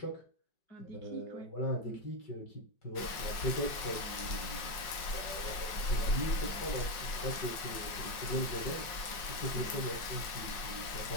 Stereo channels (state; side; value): late; right; 5.5 ms